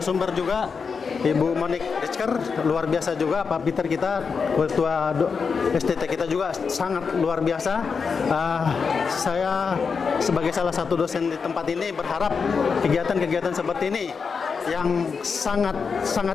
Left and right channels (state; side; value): quieter; right; 5.5 dB